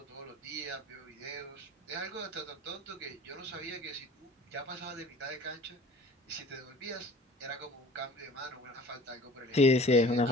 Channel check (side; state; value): both; normal; correlation 0.46